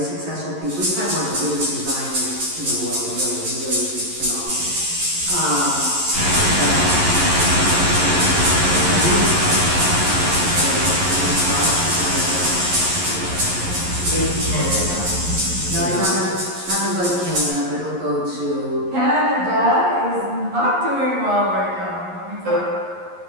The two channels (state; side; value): late; left; 11 ms